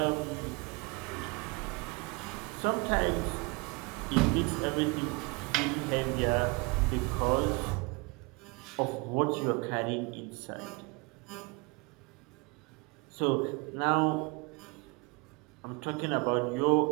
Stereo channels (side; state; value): left; quieter; 28.6 dB